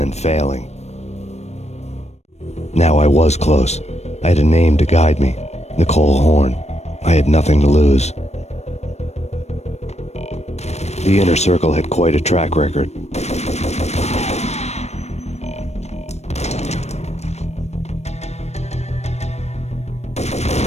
failing. Now I was close. I had a name to guide me, Nicole Horn. I had nothing to lose. The Inner Circle had quite a track record.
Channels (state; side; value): late; right; 0.32 ms